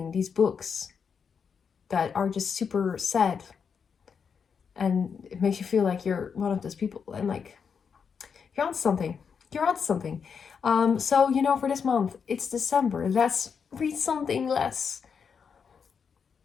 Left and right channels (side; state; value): right; quieter; 6.4 dB